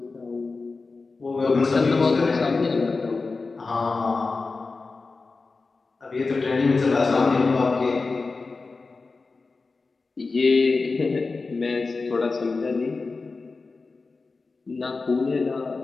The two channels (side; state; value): right; quieter; 4.0 dB